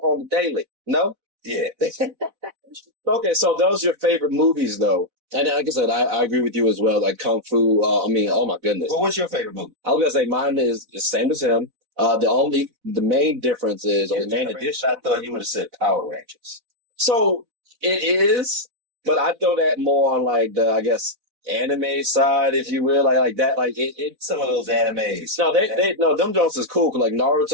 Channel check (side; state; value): left; late; 4.0 ms